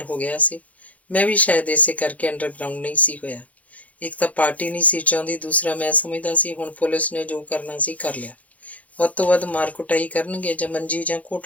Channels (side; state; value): right; late; 0.069 ms